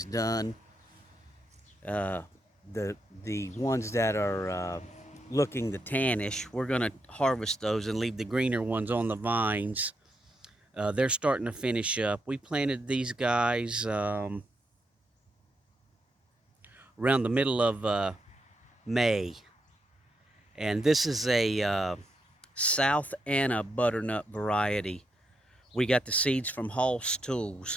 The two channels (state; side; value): normal; both; correlation 0.82